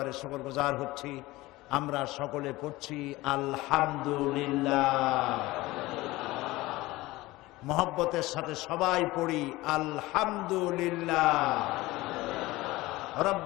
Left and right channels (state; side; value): quieter; right; 19.4 dB